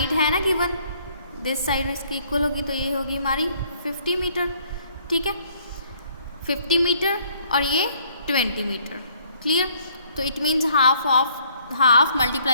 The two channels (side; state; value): both; inverted; correlation -0.63